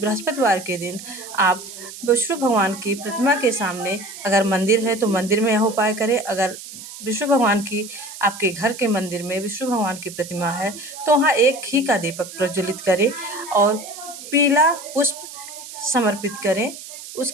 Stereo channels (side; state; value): right; noise; hiss, 13 dB below the sound